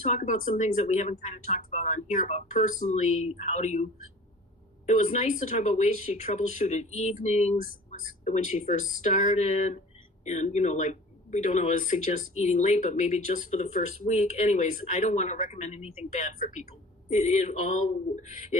about some things that we haven't kind of talked about on here about personally, it was nice to talk about ways she troubleshooted evenings when she first started. And, we don't always suggest eating late, but maybe just for the first week. Anyways, I don't want to recommend anything bad for people.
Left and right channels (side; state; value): both; normal; correlation 0.43